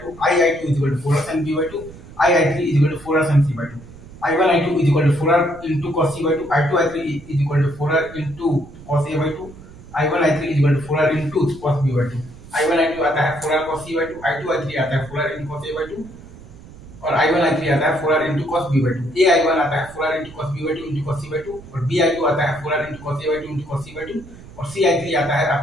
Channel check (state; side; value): noise; right; rumble, 18 dB below the sound